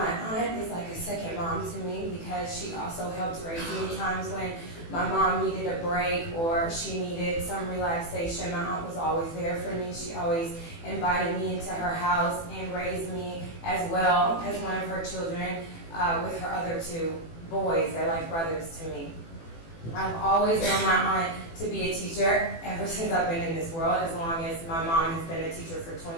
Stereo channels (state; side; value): late; right; 18 ms